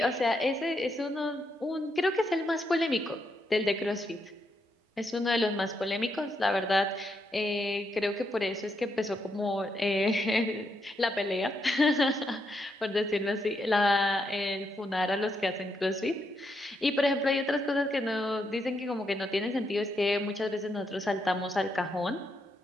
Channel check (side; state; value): both; normal; correlation 0.80